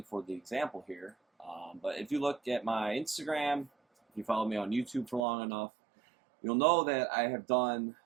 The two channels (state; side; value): drops out; left; at 5.2 s